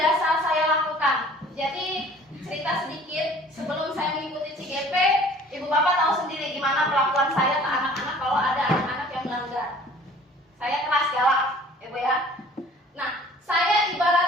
saya lakukan. Jadi cerita sedikit, sebelum saya mengikuti CGP, ibu bapak tahu sendiri gimana perlakuan saya ke anak-anak kalau ada anak-anak yang melanggar. Saya keras galak, ibu ya. Nah, saya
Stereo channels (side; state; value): both; normal; correlation 0.50